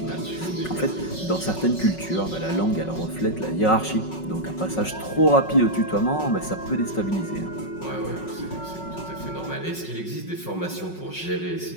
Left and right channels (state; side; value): late; right; 5.4 ms